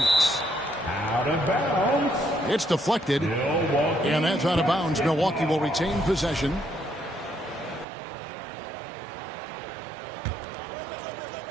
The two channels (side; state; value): left; drops out; at 7.9 s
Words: Out of bounds. It's deflected. Milwaukee. And that's out of bounds. Milwaukee will retain possession.